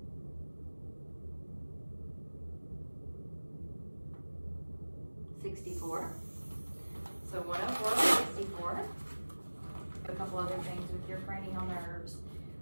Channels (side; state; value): both; inverted; correlation -1.00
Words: So 104, 64. A couple other things with your cranial nerves,